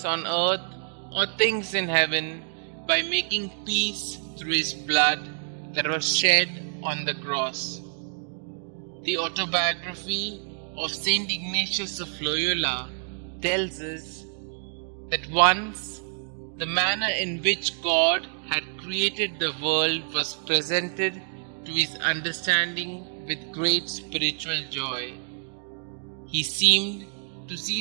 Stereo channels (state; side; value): silent; left; digital silence